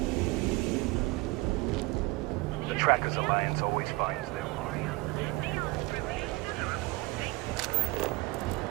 Trackers Alliance always finds their mark.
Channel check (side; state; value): left; quieter; 22.8 dB